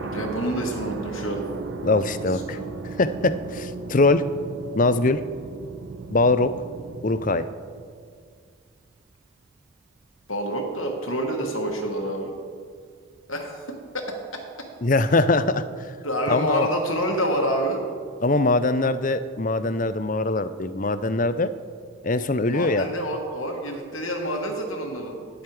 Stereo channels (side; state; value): both; normal; correlation 0.13